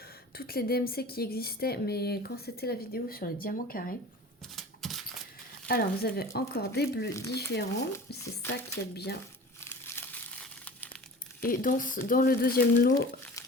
toutes les DMC qui existaient, mais quand c'était la vidéo sur les diamants carrés. Alors, vous avez encore des bleus différents. C'est ça qui est bien. Et dans le deuxième lot,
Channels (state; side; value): normal; both; correlation 0.39